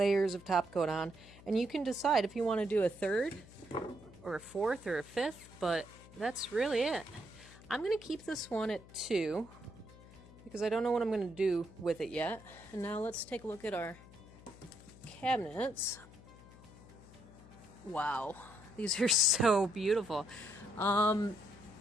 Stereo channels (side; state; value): left; noise; hum, 20 dB below the sound